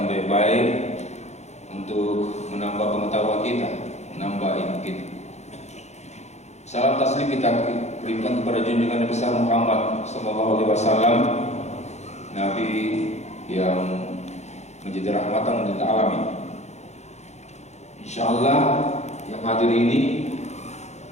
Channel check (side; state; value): right; late; 0.33 ms